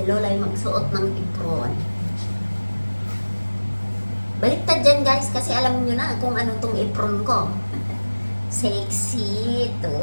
lola ay magsuot ng apron. Baliktad dyan guys, kasi alam nyo na kung ano tong apron ko. Sexy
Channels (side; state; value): both; inverted; correlation -1.00